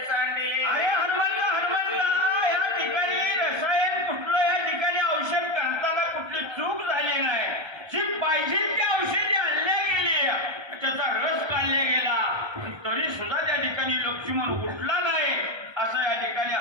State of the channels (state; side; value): late; left; 1.3 ms